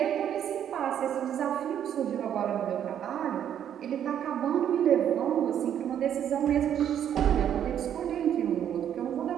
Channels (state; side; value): quieter; left; 9.7 dB